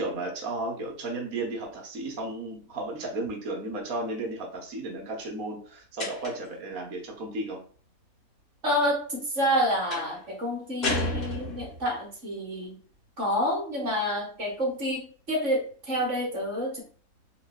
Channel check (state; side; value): late; left; 3.5 ms